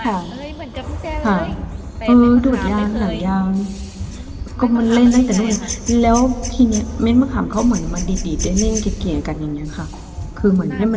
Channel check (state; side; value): identical; both; correlation 1.00